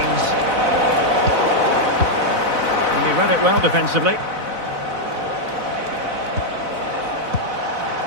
And he read it well defensively.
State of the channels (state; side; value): late; left; 4.0 ms